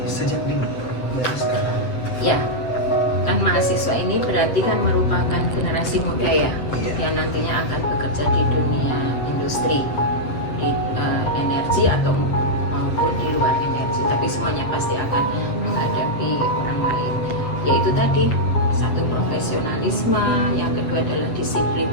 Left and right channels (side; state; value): right; late; 7.8 ms